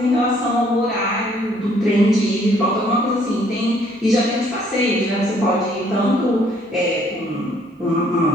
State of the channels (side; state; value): both; normal; correlation 0.63